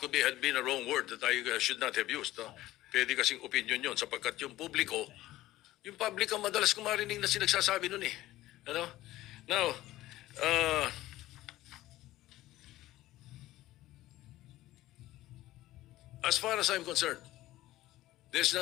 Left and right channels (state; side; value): quieter; right; 16.0 dB